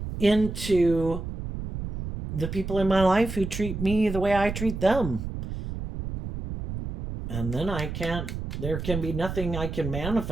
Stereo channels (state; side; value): noise; right; rumble, 6 dB below the sound